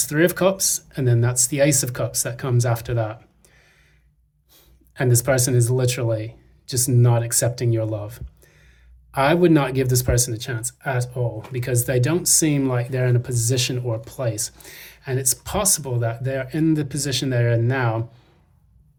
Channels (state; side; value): identical; both; correlation 1.00